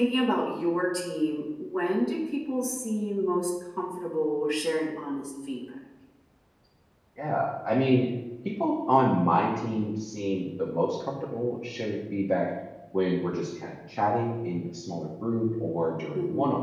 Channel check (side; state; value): both; identical; correlation 1.00